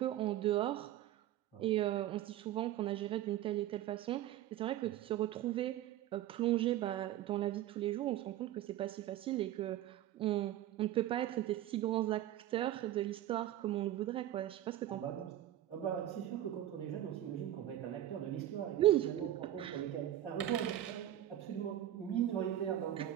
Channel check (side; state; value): left; quieter; 13.0 dB